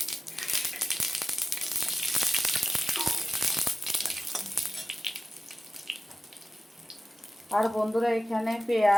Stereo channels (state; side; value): normal; both; correlation 0.95